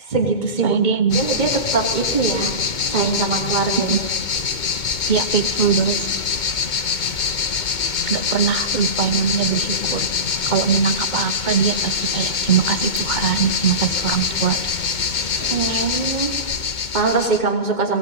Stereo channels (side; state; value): right; late; 2.2 ms